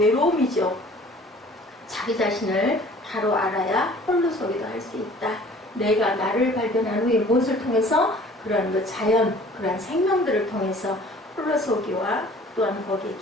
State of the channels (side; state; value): both; normal; correlation 0.50